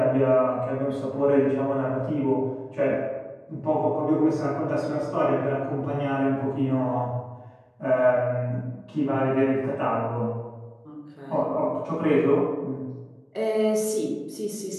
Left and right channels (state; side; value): identical; both; correlation 1.00